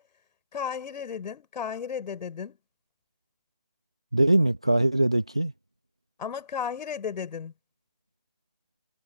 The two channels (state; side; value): inverted; both; correlation -0.82